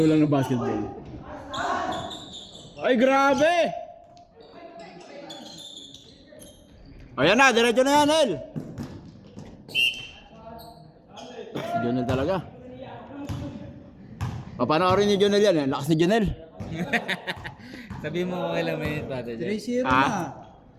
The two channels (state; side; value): identical; both; correlation 1.00